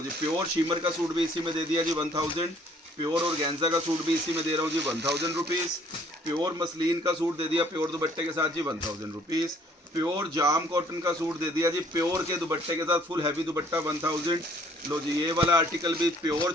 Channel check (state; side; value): normal; both; correlation 0.60